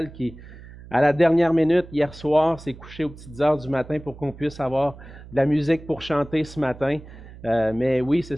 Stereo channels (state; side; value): noise; right; hum, 17 dB below the sound